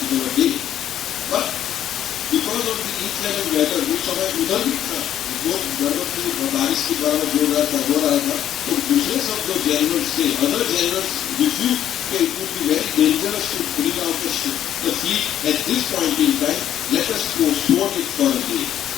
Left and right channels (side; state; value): right; quieter; 10.9 dB